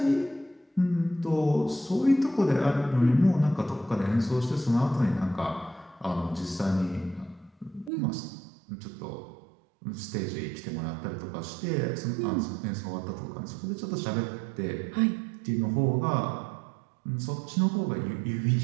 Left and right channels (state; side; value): drops out; left; at 7.9 s